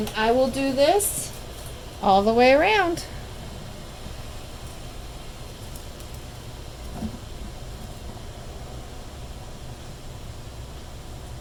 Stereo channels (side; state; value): both; identical; correlation 1.00